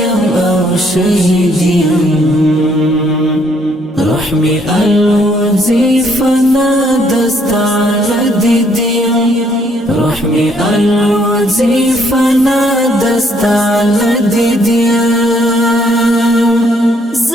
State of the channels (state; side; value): normal; both; correlation 0.67